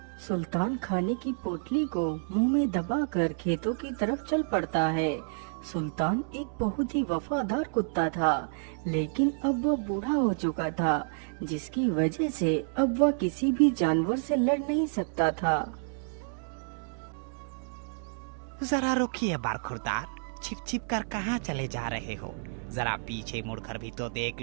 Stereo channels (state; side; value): silent; left; digital silence